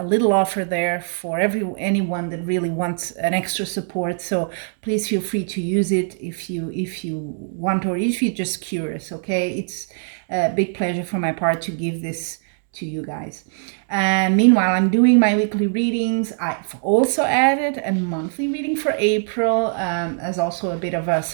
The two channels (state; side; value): silent; left; digital silence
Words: little offer there for anyone that really wants an extra support. So please feel free to use it if you want, or if you're just curious. Okay, it's a big pleasure for my part to give this to you guys. Meanwhile, I'm doing my weekly readings. I've also added a monthly reading for April as also a bit of a